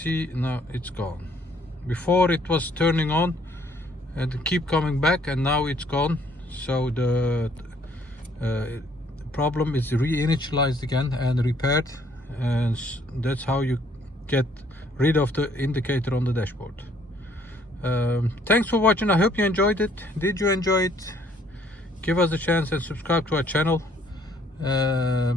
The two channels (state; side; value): normal; both; correlation 0.63